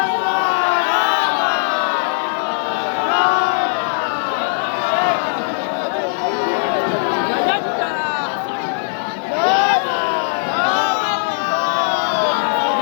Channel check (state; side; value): silent; right; 59 dB below the other